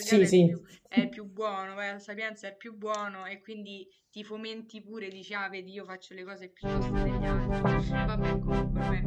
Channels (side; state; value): both; identical; correlation 1.00